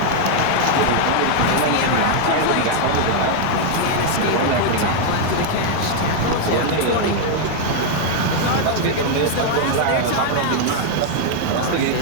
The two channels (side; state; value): both; different; correlation 0.00